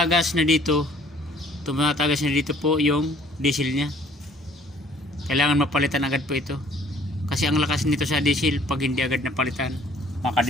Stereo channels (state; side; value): normal; both; correlation 0.57